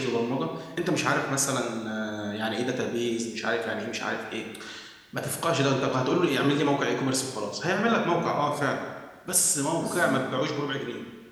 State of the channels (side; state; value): both; identical; correlation 1.00